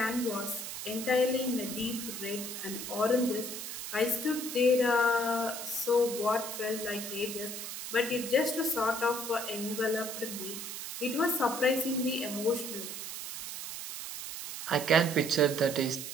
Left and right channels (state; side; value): noise; right; hiss, 7 dB below the sound